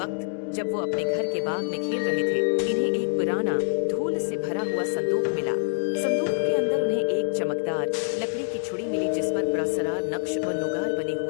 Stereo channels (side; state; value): right; silent; digital silence